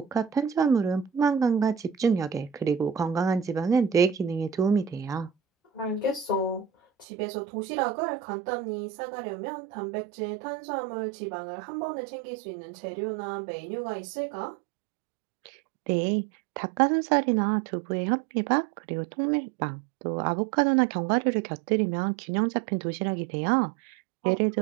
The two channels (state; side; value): drops out; left; at 7.1 s